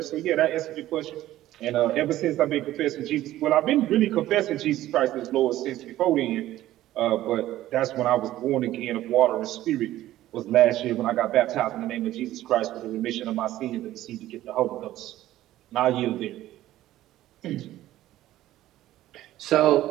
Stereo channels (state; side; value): quieter; left; 14.5 dB